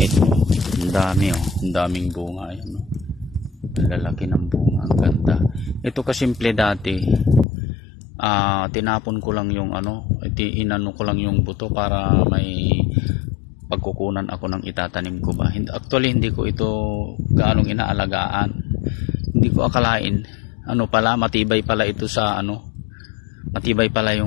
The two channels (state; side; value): drops out; right; at 7.5 s